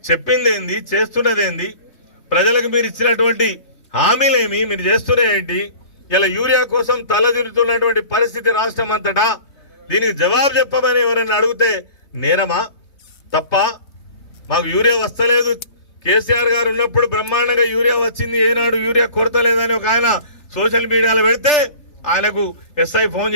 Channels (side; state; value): right; late; 3.3 ms